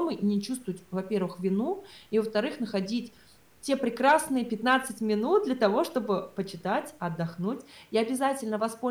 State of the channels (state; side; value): identical; both; correlation 1.00